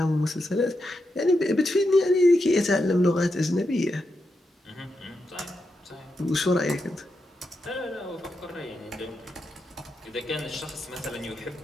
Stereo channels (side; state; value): both; normal; correlation 0.86